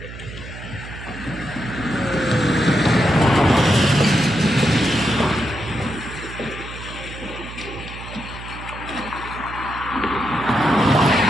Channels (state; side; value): noise; right; hum, 12 dB below the sound